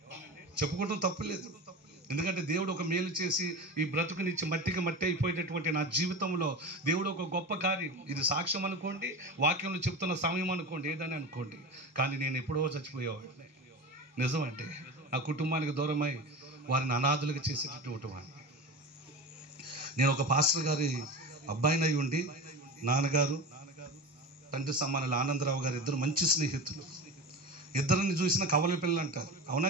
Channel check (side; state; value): both; normal; correlation 0.27